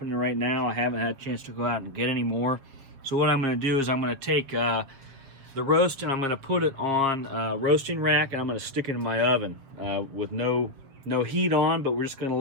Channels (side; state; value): left; late; 7.1 ms